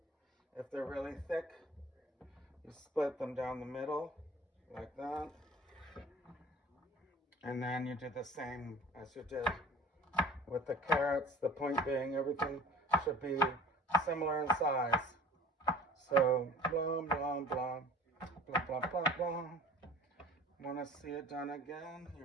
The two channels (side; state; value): both; normal; correlation 0.45